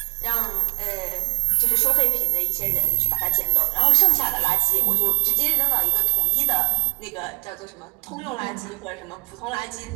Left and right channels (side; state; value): left; quieter; 31.2 dB